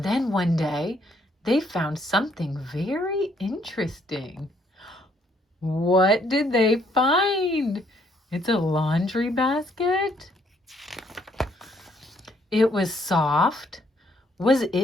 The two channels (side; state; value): both; normal; correlation 0.68